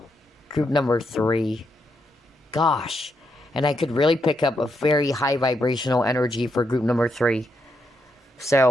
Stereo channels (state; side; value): normal; both; correlation 0.80